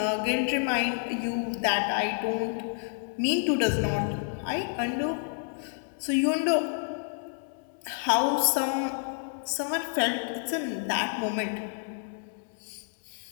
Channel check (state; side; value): silent; right; 57 dB below the other